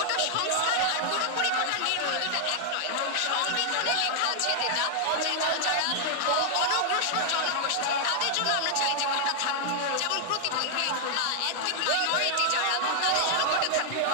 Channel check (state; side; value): different; both; correlation 0.00